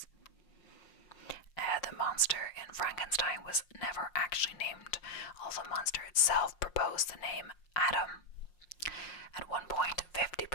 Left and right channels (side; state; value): right; late; 5.6 ms